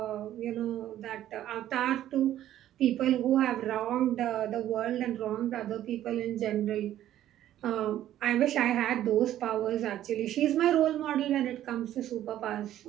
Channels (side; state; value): left; quieter; 12.4 dB